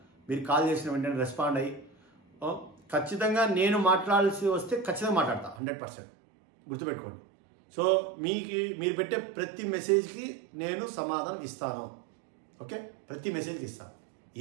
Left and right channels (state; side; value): drops out; left; at 5.6 s